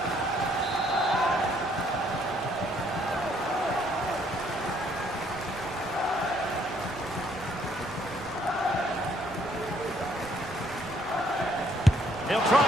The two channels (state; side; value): noise; right; rumble, 20 dB below the sound